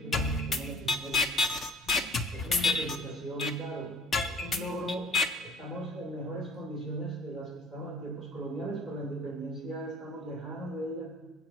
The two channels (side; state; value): both; normal; correlation 0.49